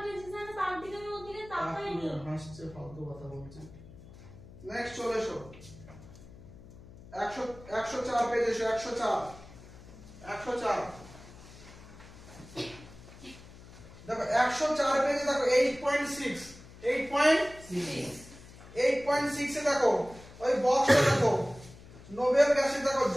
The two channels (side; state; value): left; noise; hum, 19 dB below the sound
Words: হাসছে ফালতু কথা বলছে। নেক্সট চলে এসো 104 পেজ এসো 104 দেখো 104 পেজে দেখো 8.6 8.6 এ দেখো ওই বক্সটা দেখো নোবেল গ্যাসে দেখো